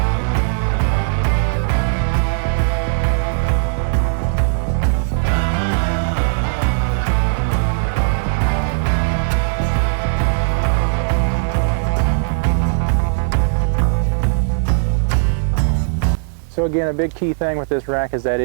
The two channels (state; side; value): silent; left; digital silence